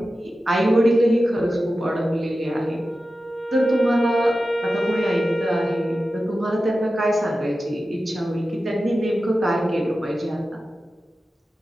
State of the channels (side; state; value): both; normal; correlation 0.93